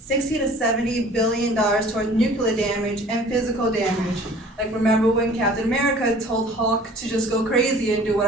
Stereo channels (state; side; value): normal; both; correlation 0.48